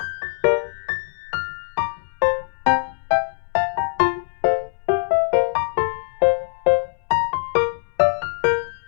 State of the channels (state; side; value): silent; right; 64 dB below the other